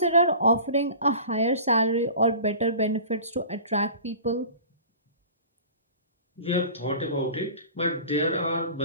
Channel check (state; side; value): inverted; both; correlation -0.40